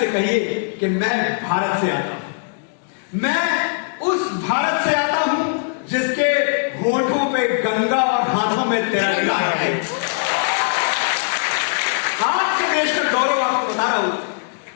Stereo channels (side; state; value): right; silent; digital silence